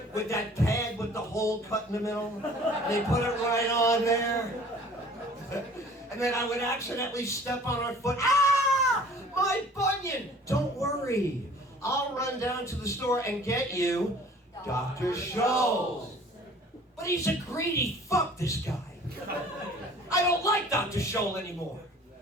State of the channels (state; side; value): normal; both; correlation 0.50